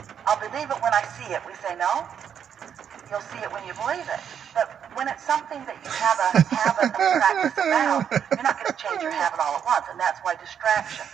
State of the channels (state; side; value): quieter; left; 8.3 dB